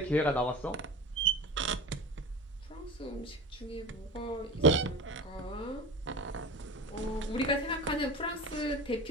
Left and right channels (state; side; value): normal; both; correlation 0.31